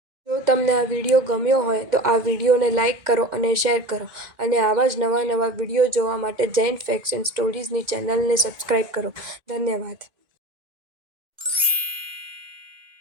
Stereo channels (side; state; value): left; late; 2.1 ms